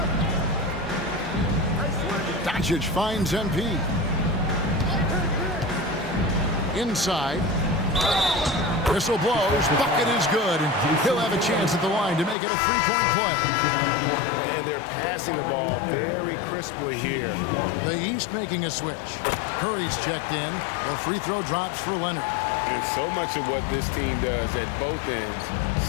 Doncic finds MP. Inside. Whistle blows. Bucket is good. And he'll have a chance at the line to make it a 3-point play. And they're passing the ball very crisply here. The East making a switch. Curry's checked in. The free throw drops for Leonard. And so much of what this team does at both ends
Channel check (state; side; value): drops out; right; at 12.4 s